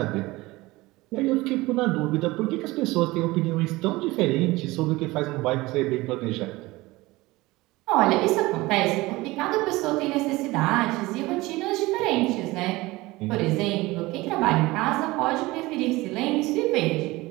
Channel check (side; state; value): left; quieter; 20.5 dB